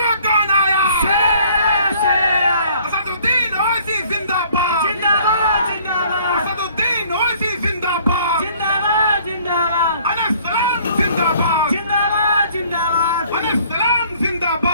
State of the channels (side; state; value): both; inverted; correlation -0.57